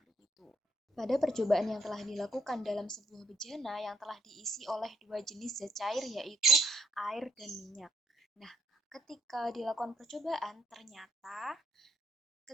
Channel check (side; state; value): both; normal; correlation 0.71